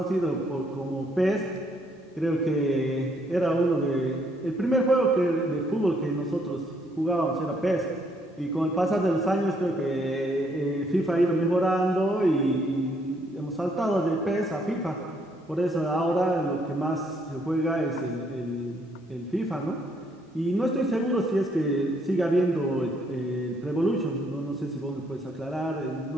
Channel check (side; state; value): both; normal; correlation 0.69